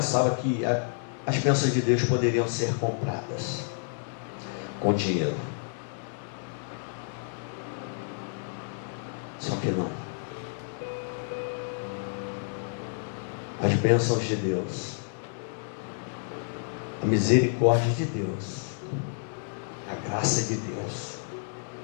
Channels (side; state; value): right; silent; 58 dB below the other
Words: que as bênçãos de Deus poderiam ser compradas com dinheiro. Só que não. As bênçãos de Deus, a misericórdia de Deus, a graça de Deus,